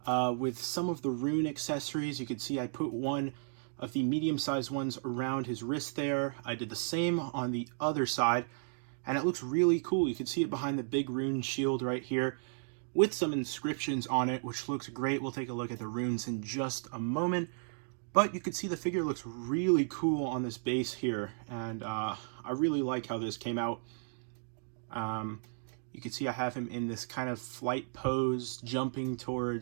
With some of the rune accessories. You can see I put one of the medium-sized ones around his wrist there. I did the same on the other side, and it looks really cool. You can see it behind the big rune shield right here with some inscriptions on it, which looks great. We'll take a look at the runes in just a moment, but you can see the figure looks really cool on this base here, and I really like how this came out. You can see I have him in this kind of flight pose, jumping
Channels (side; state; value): left; silent; digital silence